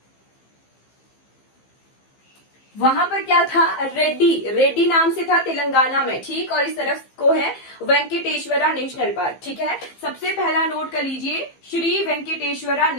वहां पर क्या था? रेड्डी नाम से था तेलंगाना में, ठीक। और इस तरफ को है वेंकटेश्वरा नेशनल पार्क, ठीक है। सबसे पहला नोट कर लीजिए, श्री वेंकटेश्वरा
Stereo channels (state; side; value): late; right; 15 ms